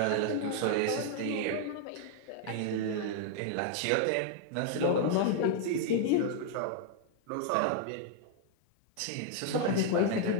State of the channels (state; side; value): different; both; correlation 0.00